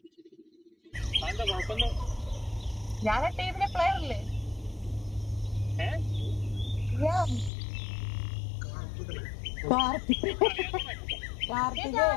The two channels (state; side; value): drops out; right; at 7.5 s